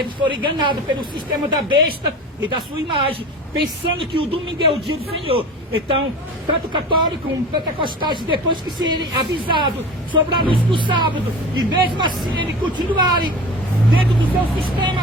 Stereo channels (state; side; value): normal; both; correlation 0.35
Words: foram enganados pelo sistema da besta e da sua imagem, pensando que o domingo é o dia do Senhor. Então, tanto católico como pentecostais, depois que serem avisados sobre a luz do sábado, e mesmo assim eles continuarem dentro do seu